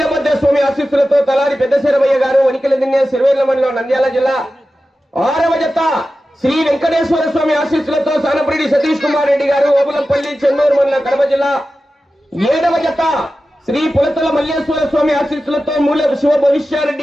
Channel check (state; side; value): normal; both; correlation 0.94